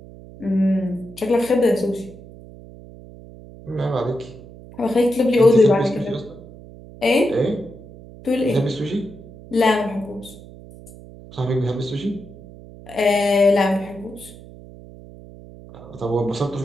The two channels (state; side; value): noise; right; hum, 18 dB below the sound